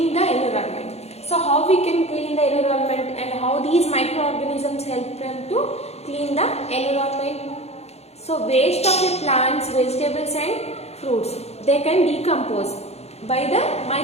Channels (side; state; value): right; late; 0.31 ms